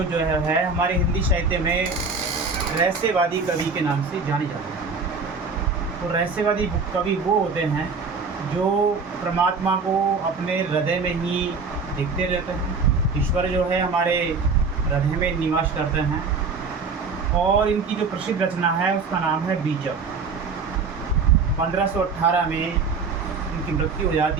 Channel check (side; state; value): left; quieter; 4.6 dB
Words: है हमारे हिंदी साहित्य में रहस्यवादी कवि के नाम से जाने जाते हैं। तो रहस्यवादी कवि वो होते हैं जो परमात्मा को अपने हृदय में ही देखते रहते हैं। ईश्वर जो है हमारे हृदय में निवास करते हैं। और इनकी जो प्रसिद्ध रचना है उसका नाम है बीजक। 1518 में इनकी मृत्यु हो